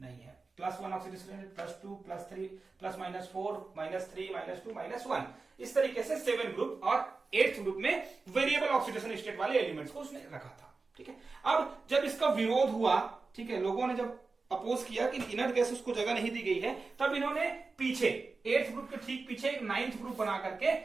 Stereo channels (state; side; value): quieter; left; 4.0 dB